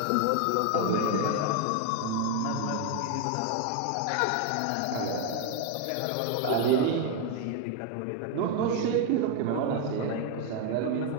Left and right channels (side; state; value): both; different; correlation 0.01